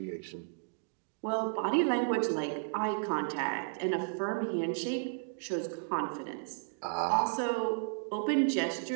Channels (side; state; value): left; silent; digital silence